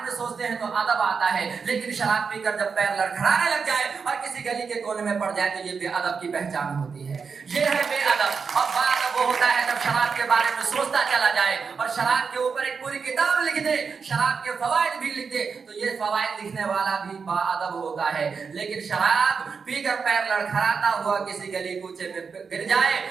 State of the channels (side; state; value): left; quieter; 5.5 dB